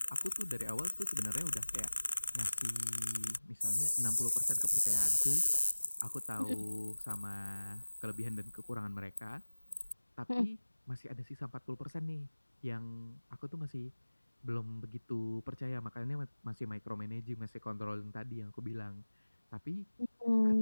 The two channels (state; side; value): inverted; both; correlation -1.00